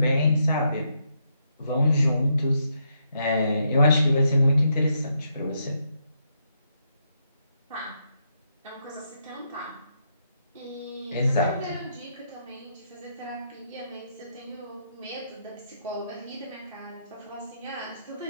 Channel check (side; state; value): both; inverted; correlation -0.78